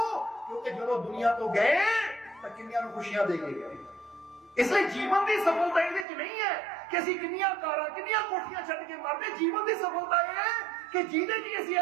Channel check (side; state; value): left; drops out; at 6.1 s